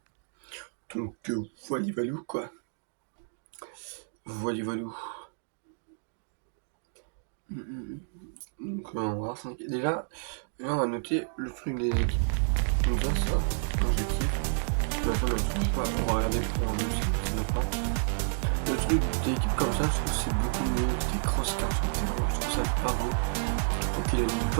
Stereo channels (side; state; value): left; silent; digital silence